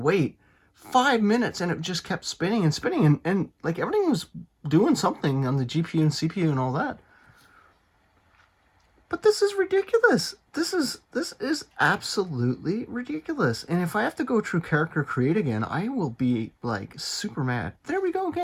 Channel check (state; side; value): identical; both; correlation 1.00